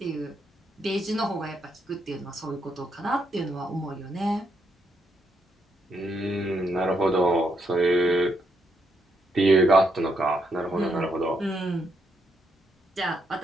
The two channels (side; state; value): both; normal; correlation 0.78